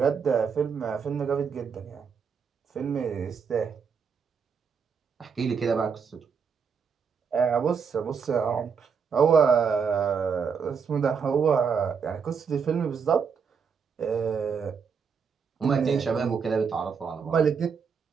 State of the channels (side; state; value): left; quieter; 6.2 dB